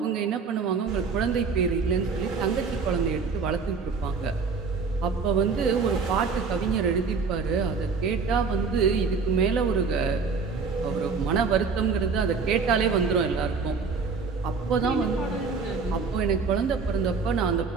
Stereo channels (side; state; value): left; quieter; 4.9 dB